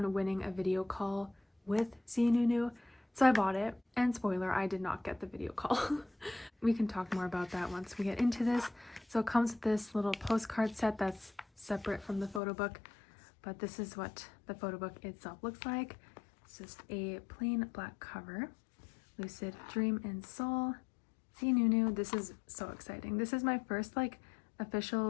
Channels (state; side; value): drops out; right; at 12.4 s